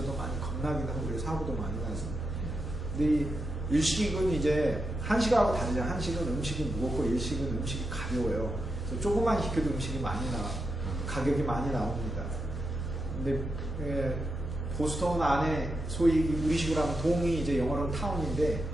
많이 겁나긴 하고 그래서 사고도 많이 나서. 근데 이 일식은 이제 한식하고 다르죠. 한식은 음식이 무겁고 일식은 음식이 가벼워요. 그래서 조금만 시켜도 음식이 많이 가격이 많이 나옵니다. 근데 보스턴 안에 소위 우리식으로 하면 동이 이제 영어로는 타운인데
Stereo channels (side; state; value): both; normal; correlation 0.86